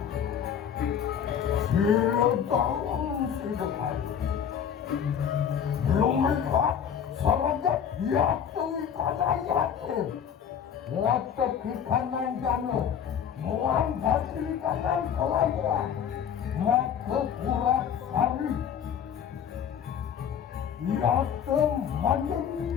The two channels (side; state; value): right; quieter; 8.3 dB